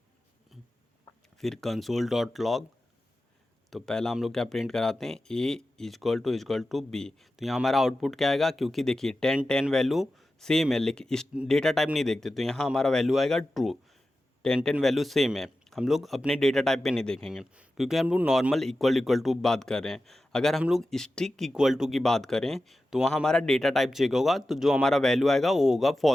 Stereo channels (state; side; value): normal; both; correlation 0.93